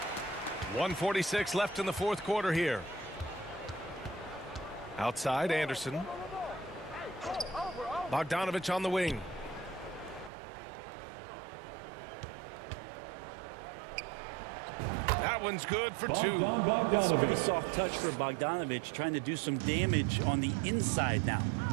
1:46 left in the fourth quarter here. Outside, Anderson. Bogdanovich on the wing. That one's good for 2. It's a pretty Bogdanovich. soft touch for Bogdanovich, trying to do some damage on the inside now.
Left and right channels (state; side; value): drops out; left; at 10.3 s